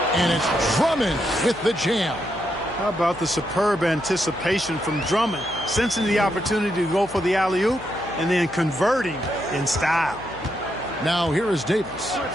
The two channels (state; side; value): noise; left; hum, 19 dB below the sound